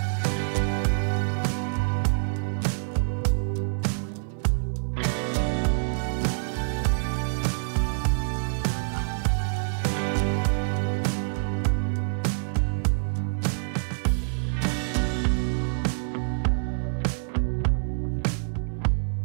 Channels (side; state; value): left; silent; 61 dB below the other